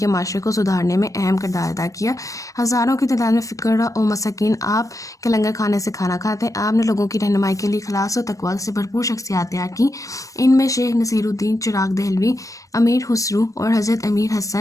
معاشرے کو سدھارنے میں اہم کردار ادا کیا۔ ہزاروں کی تعداد میں فقراء و مساکین آپ کے لنگر کھانے سے کھانا کھاتے۔ آپ نے لوگوں کی رہنمائی کے لیے اخلاص و تقویٰ سے بھرپور شخصیات تیار کی۔ ان میں شیخ نصیر الدین چراغ دہلوی، امیر خسرو اور حضرت امیر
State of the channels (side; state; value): right; late; 0.16 ms